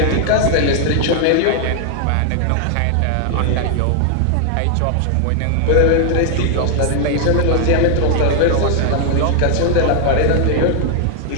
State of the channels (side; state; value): both; different; correlation 0.00